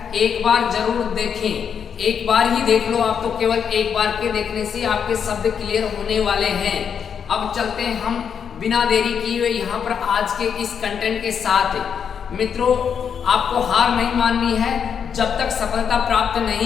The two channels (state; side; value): quieter; right; 7.3 dB